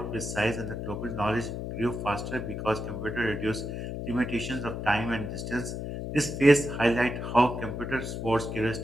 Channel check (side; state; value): left; noise; hum, 5 dB below the sound